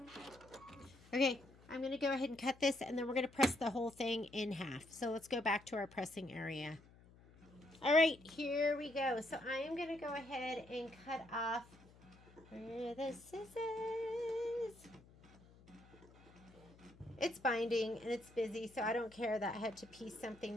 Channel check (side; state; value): left; noise; hum, 24 dB below the sound